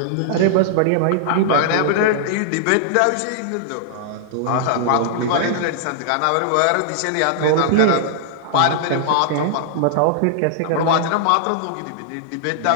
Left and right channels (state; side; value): different; both; correlation -0.01